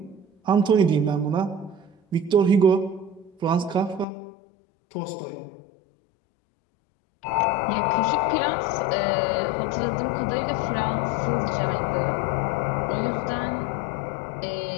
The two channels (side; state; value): right; drops out; at 4.0 s